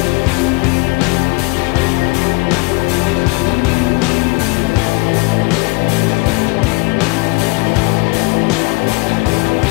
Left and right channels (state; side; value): quieter; right; 26.0 dB